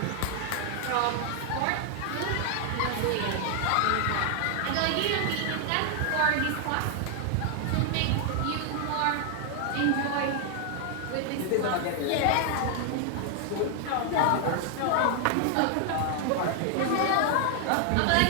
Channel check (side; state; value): both; different; correlation 0.00